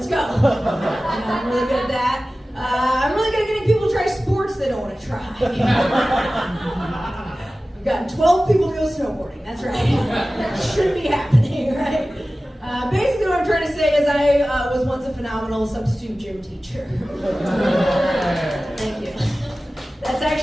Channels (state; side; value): normal; both; correlation 0.96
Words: go. I'm really good at that. I'm really good at getting people to try sports they don't want to try. I've gotten 12 people to go snowboarding, that's right. Shouldn't be happening, right? Basically what I'm trying to say is I was once a phenomenal substitute gym teacher. Thank you. That's